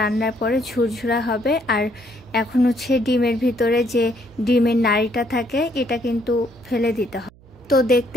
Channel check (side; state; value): right; noise; hum, 26 dB below the sound